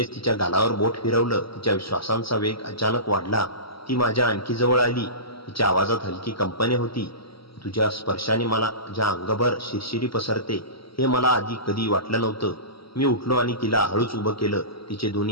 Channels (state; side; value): late; right; 0.75 ms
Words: तिच्या गालावर बोट फिरवलं. तिच्या श्वासांचा वेग अचानक वाढला. ती माझ्या आणखी जवळ आली. तिच्या आवाजात हलकी कंपने होती. तुझ्या स्पर्शाने मला ज्या अंगभर शिरशिरी पसरते हे मला आधी कधी वाटलं नव्हतं. मी उठलो आणि तिला हळूच उभं केलं. तिचे